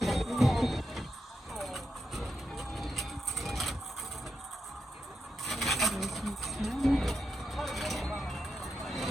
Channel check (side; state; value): both; normal; correlation 0.86